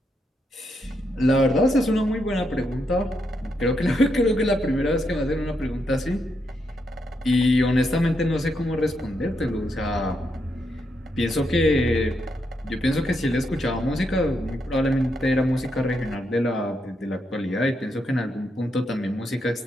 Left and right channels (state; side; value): normal; both; correlation 0.81